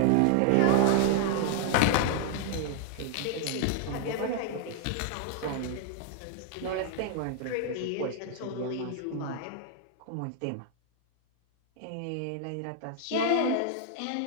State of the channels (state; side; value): different; both; correlation 0.00